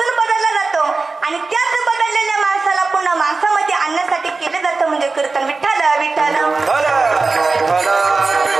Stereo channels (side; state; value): left; quieter; 3.9 dB